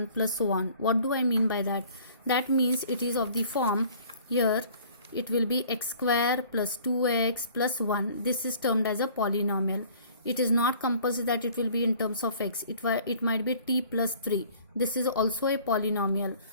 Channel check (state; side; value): inverted; both; correlation -0.52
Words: plus so on. What do I mean by that? That means it is of the form, here it will be x square plus 2x plus 1. This is termed as a polynomial. It is not compulsory that it will be in terms of x. It might be t plus 3. This is also a polynomial.